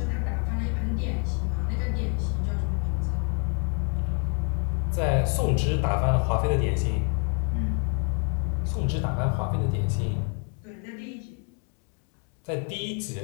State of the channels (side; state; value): right; quieter; 35.4 dB